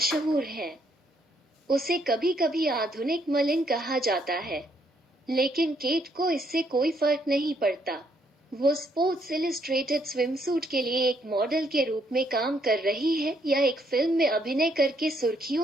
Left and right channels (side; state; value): both; normal; correlation 0.71